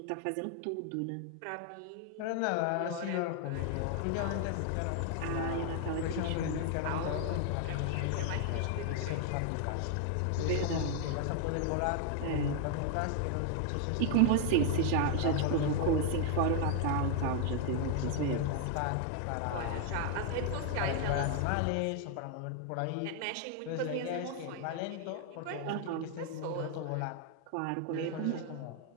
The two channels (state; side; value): different; both; correlation 0.00